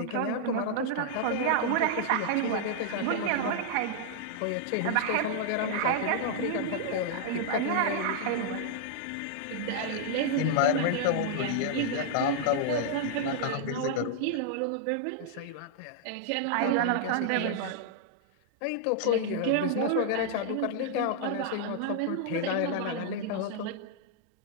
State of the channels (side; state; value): both; different; correlation -0.01